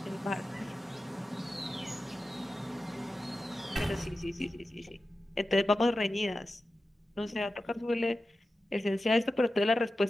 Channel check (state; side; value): normal; both; correlation 0.93